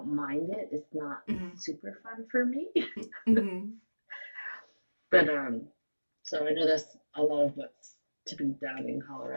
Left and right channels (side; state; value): both; inverted; correlation -1.00